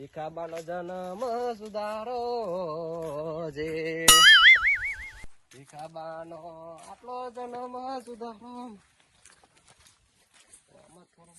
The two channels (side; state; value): both; identical; correlation 1.00